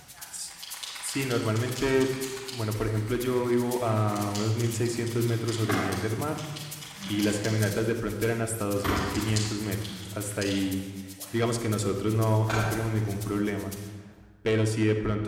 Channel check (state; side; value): identical; both; correlation 1.00